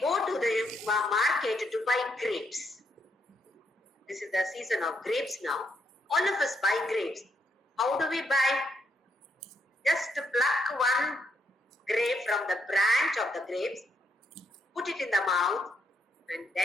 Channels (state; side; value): normal; both; correlation 0.77